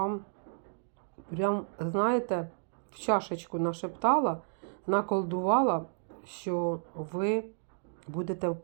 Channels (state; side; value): silent; left; digital silence